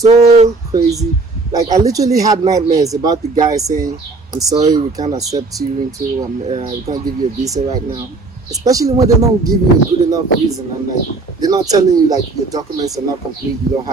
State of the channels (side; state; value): left; quieter; 3.6 dB